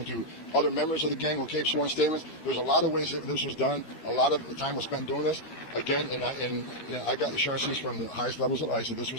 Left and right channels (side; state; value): right; late; 13 ms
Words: to other members of the gang who gave sworn statements. There's a lot of ways that this was done. A lot of the time was spent doing this. Again, I got assurances from the highest levels of ICE that this